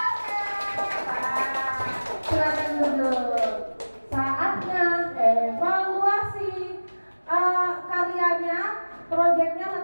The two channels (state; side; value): inverted; both; correlation -1.00